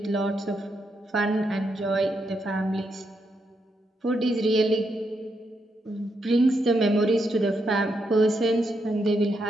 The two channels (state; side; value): normal; both; correlation 0.80